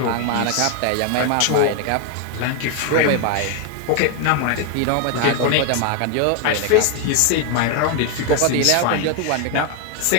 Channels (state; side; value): different; both; correlation 0.01